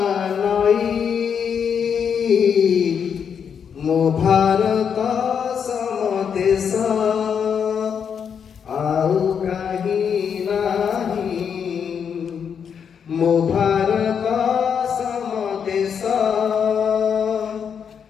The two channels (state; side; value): quieter; right; 7.3 dB